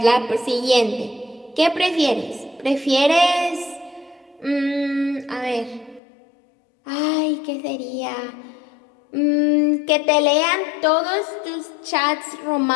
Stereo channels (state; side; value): drops out; right; at 6.0 s